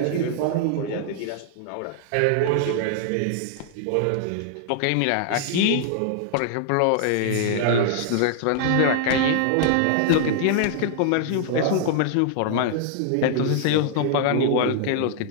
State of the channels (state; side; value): different; both; correlation -0.01